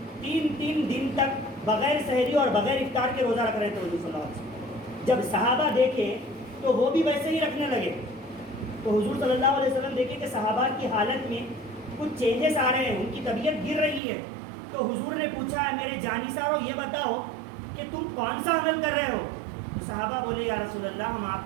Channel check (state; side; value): drops out; left; at 14.0 s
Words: 3 دن تک بغیر سحری اور بغیر افطار کے روزہ رکھ رہے تھے حضور صلی اللہ علیہ وسلم. جب صحابہ دیکھے تو وہ بھی ویسے ہی رکھنے لگے. تو حضور صلی اللہ علیہ وسلم دیکھے کہ صحابہ کی حالت میں کچھ چینجز آ رہے ہیں، ان کی طبیعت گر رہی ہے. تو حضور نے پوچھا میرے جانثارو یہ بتاؤ کہ تم کون سا عمل کر رہے ہو؟ تو صحابہ بولے یا رسول اللہ ہم